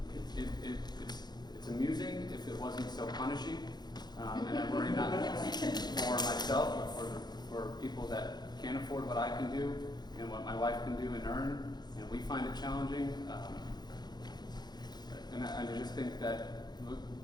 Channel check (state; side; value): late; right; 0.20 ms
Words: it's amusing if it wasn't so punishing, and I worry not just for myself, but for people that can't afford what I can do and what my wife can do and earn, and we find it challenging. And I just think that